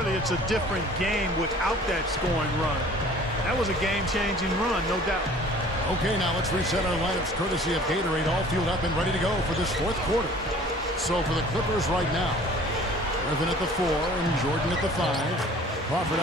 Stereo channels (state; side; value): normal; both; correlation 0.49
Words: it's a different game without that scoring run. That was a game-changing run, no doubt. Okay, now let's reset our lineups courtesy of Gatorade, all fueled up and ready to go for this fourth quarter. So for the Clippers right now, Griffin at the 4 and Jordan at the 5. Crawford